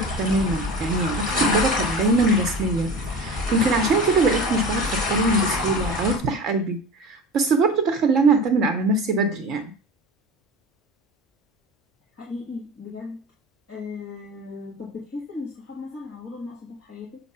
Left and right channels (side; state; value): both; normal; correlation 0.33